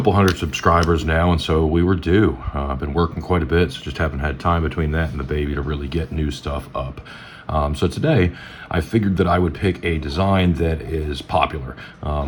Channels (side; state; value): both; identical; correlation 1.00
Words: hundred subscribers now, and so we were due. I've been working quite a bit, so just haven't had time between that and the baby to really get new stuff up. So today, I figured that I would pick a design that is popular.